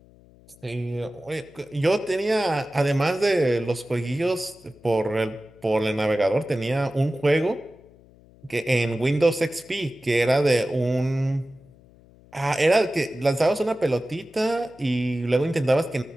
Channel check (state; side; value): noise; left; hum, 26 dB below the sound